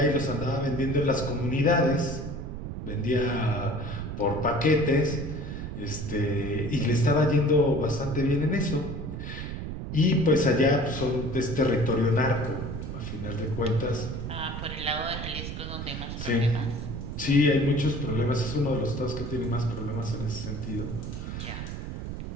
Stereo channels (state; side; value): noise; right; rumble, 6 dB below the sound